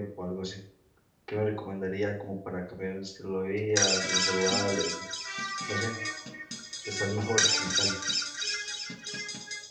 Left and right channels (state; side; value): identical; both; correlation 1.00